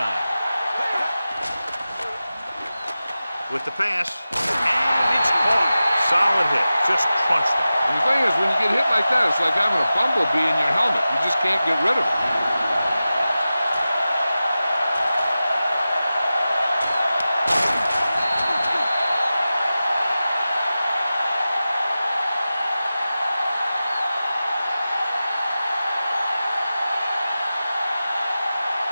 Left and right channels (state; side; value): inverted; both; correlation -0.94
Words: With the pass, and it's caught. Solid hit, just crunched him. And the thing is, when you get hit like that, it's like having a bumblebee in your helmet. You just can't get rid of it.